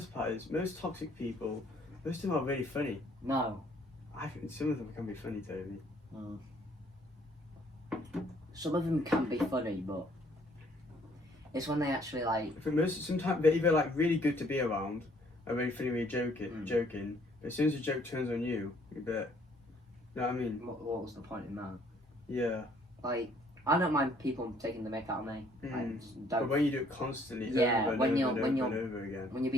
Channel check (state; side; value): normal; both; correlation 0.63